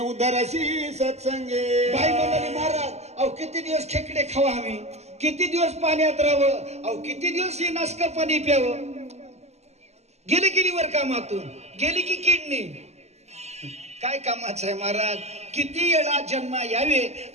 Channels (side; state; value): left; late; 0.32 ms